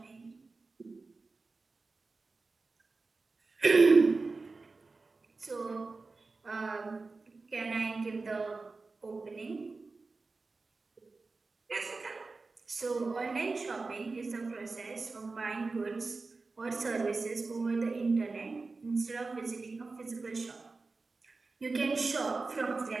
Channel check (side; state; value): left; quieter; 3.9 dB